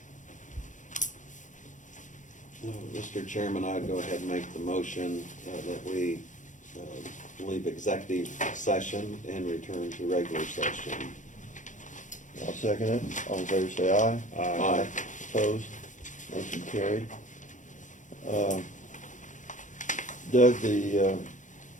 Mr. Chairman, I'd go ahead and make the motion that we leave executive session and return to regular session. I'll second it. All in favor, say aye. Aye. Opposed? Motion carried. Doug, the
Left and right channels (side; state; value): right; late; 0.36 ms